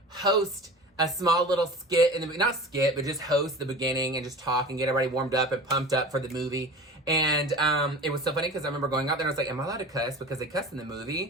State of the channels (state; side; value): normal; both; correlation 0.36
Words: host a small little skit, not skit, but just host the beginning and just talk and get everybody warmed up and pumped up for the movie. And it was so funny because I remember going out there and I was like, am I allowed to cuss? Because they cuss in the